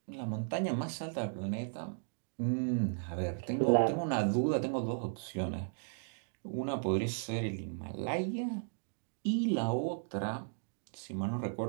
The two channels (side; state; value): left; silent; digital silence